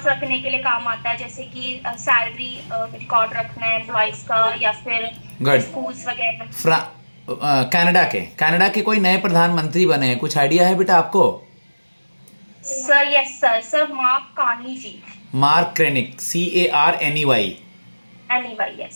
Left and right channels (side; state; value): both; inverted; correlation -1.00